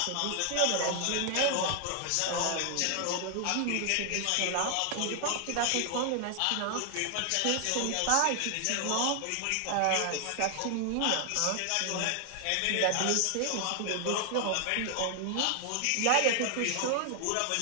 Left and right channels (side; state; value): both; different; correlation 0.00